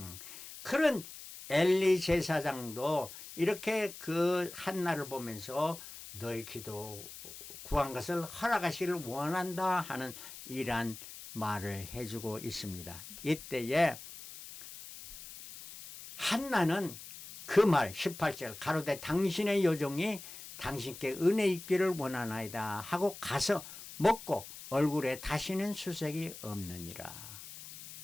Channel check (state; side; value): noise; left; hiss, 14 dB below the sound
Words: 그런 엘리 제사장도 이렇게 그 한나를 보면서 너의 기도 구한 것을 허락하시기를 원한다 하는 이러한 말을 해주고 있습니다. 이때에 한나는 그 말 18절 가로되 당신의 여종이 당신께 은혜 있기를 원하나이다 하고 가서 먹고 얼굴에 다시는 수색이 없느니라.